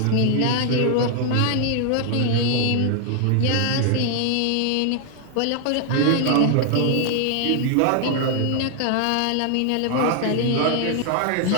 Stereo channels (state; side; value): different; both; correlation 0.00